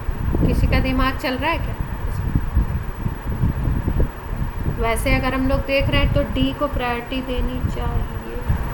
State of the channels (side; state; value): both; identical; correlation 1.00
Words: किसी का दिमाग चल रहा है क्या। वैसे अगर हम लोग देख रहे हैं तो D को प्रायोरिटी देनी चाहिए।